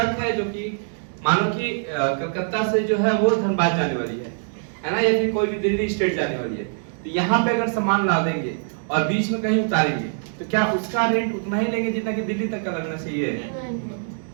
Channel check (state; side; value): silent; left; digital silence